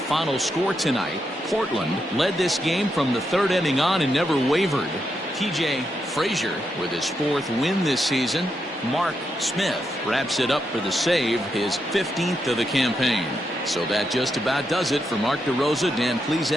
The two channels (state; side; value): normal; both; correlation 0.83